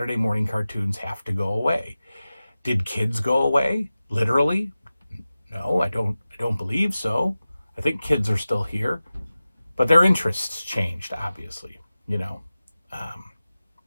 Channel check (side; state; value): both; inverted; correlation -0.95